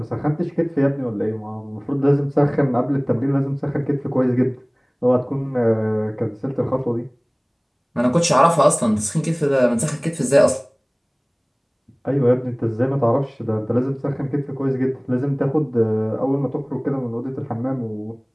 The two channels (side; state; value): both; identical; correlation 1.00